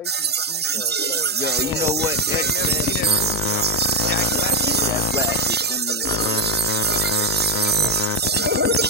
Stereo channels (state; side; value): normal; both; correlation 0.07